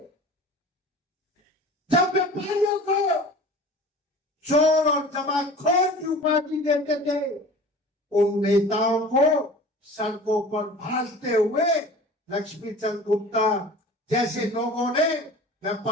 जब व्यापारियों को चोर और जमाखोर की उपाधि देते थे, उन नेताओं को सड़कों पर भाजते हुए लक्ष्मीचंद गुप्ता जैसे लोगों ने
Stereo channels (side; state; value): both; normal; correlation 0.40